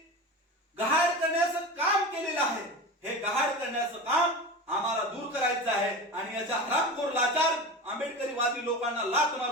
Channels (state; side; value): normal; both; correlation 0.28